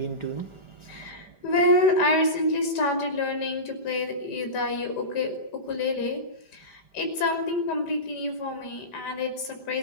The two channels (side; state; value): right; late; 5.0 ms